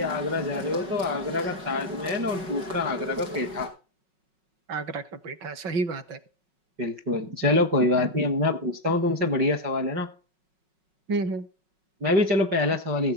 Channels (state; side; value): late; left; 5.4 ms